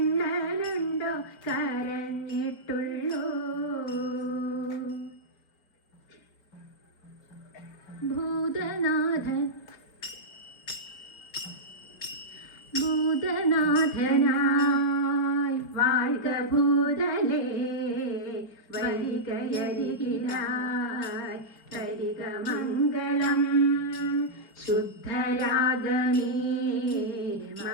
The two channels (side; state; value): right; late; 5.0 ms